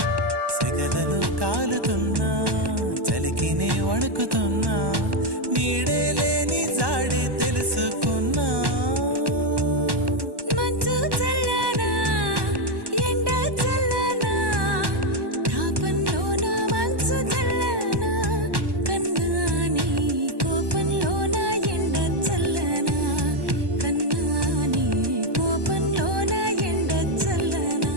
సెగలలో కాలుతున్నా చలికినే వణుకుతున్నా నీడే లేని జాడే తెలుసుకున్నా మంచు చల్లనా ఎండ చల్లనా తాపంలోన మంచు చల్లనా కన్నా నీ కోపంలోన ఎండ చల్లనా కన్నా నీ కోపంలోన ఎండ చల్లనా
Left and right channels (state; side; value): late; left; 1.1 ms